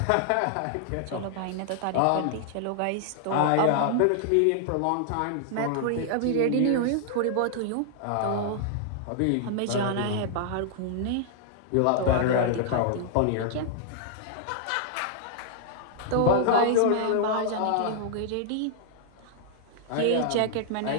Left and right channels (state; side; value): different; both; correlation -0.01